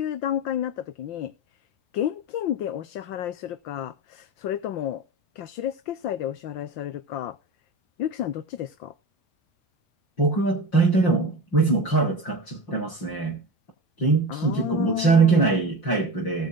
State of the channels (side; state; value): right; late; 5.7 ms